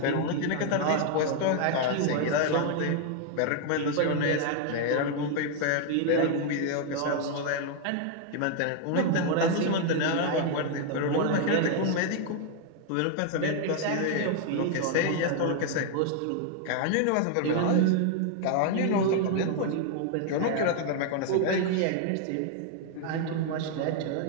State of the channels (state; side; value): different; both; correlation 0.00